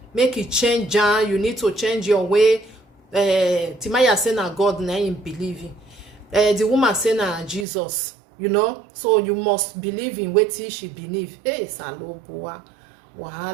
make it change. You need to change your way. Timaya say na God na him believing. The woman say na Jesus. You know, so you must believe in what she believe. Hey, Saloboa,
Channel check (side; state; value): left; drops out; at 7.7 s